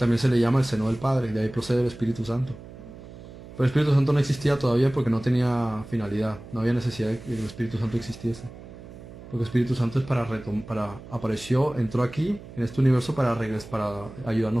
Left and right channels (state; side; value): noise; right; hum, 16 dB below the sound